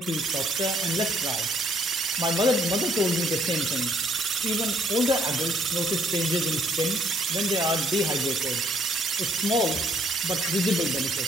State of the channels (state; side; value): normal; both; correlation 0.66